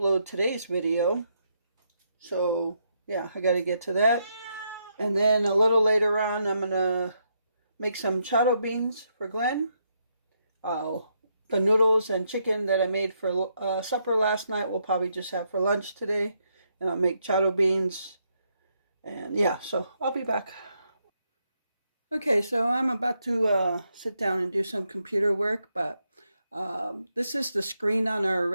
today's video. So yeah, I gotta get to that. And then a little later on, I'm gonna make some charro beans for Glenn. The noodles and chicken that I made for supper last night we'll probably just have for lunch today. And I'll make charro beans. And yeah, so I'll be back. Okay, so I'm about to sit down and do some computer work, but this is the screen on our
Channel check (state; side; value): inverted; both; correlation -0.78